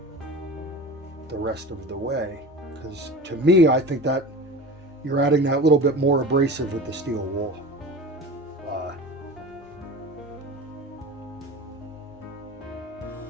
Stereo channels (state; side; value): normal; both; correlation 0.34